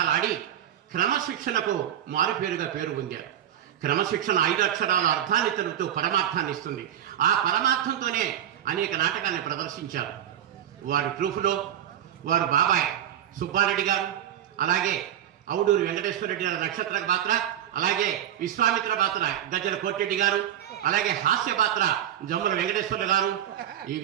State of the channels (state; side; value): quieter; left; 10.7 dB